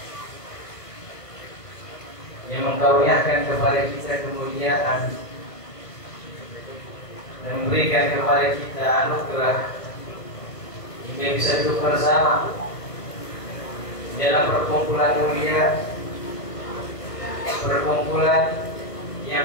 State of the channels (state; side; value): late; right; 1.4 ms